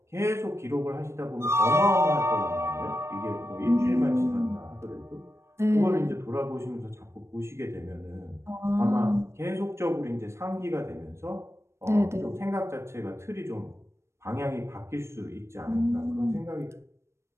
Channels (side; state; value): left; late; 0.13 ms